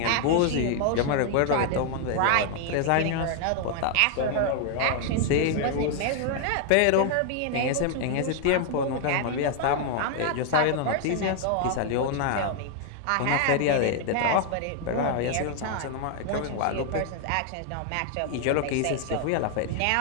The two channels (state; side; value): different; both; correlation 0.00